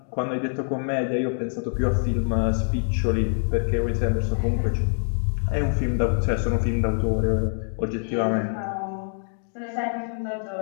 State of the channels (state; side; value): silent; right; 60 dB below the other